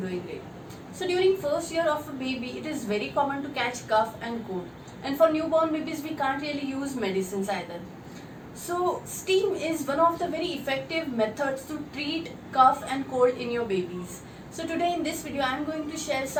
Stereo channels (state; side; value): identical; both; correlation 1.00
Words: great. So during first year of a baby, it is very common to catch cough and cold. And for newborn babies, we can't really use medicines either. So steam is one of the very effective methods to treat cough and cold in your babies. So today in this video, I am going to share